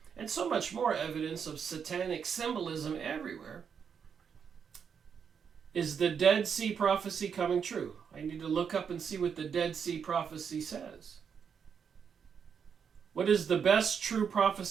And so much more evidence of satanic symbolism everywhere. Is the Dead Sea prophecy coming true? I need to look up and see what the Dead Sea prophecy says. What is the best true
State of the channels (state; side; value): quieter; left; 7.0 dB